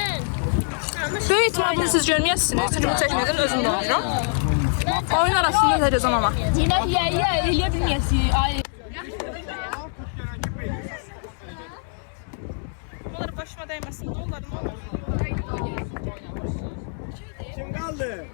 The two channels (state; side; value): silent; right; 62 dB below the other